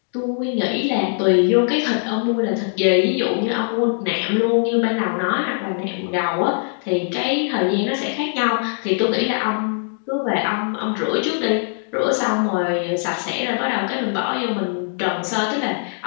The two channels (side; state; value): right; silent; 65 dB below the other